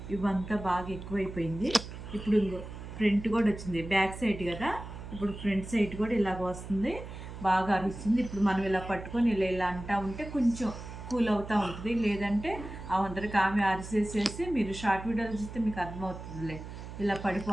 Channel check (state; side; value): noise; right; hum, 11 dB below the sound